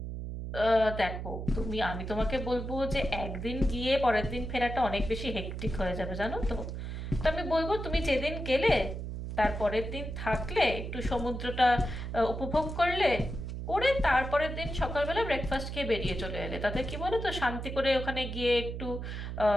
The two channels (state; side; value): noise; right; hum, 6 dB below the sound